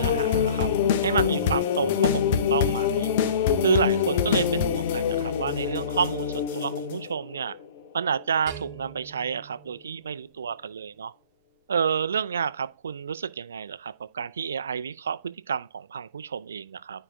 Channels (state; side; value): inverted; both; correlation -0.47